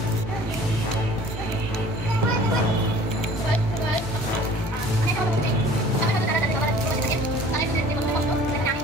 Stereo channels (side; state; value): both; normal; correlation 0.49